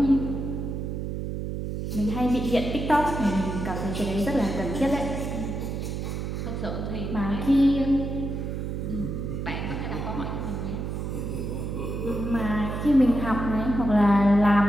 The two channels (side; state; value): right; noise; hum, 4 dB below the sound